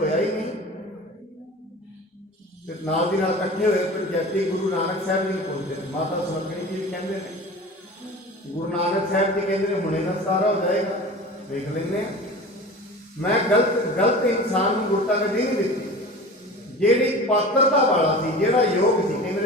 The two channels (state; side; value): normal; both; correlation 0.37